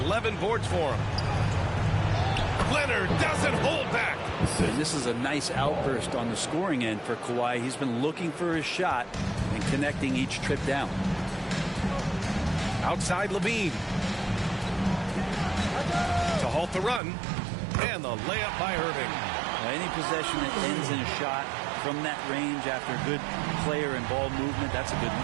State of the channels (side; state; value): left; drops out; at 17.0 s